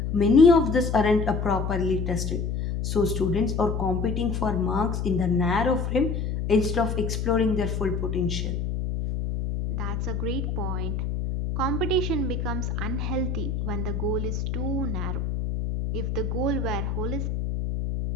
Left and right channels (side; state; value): left; noise; hum, 2 dB below the sound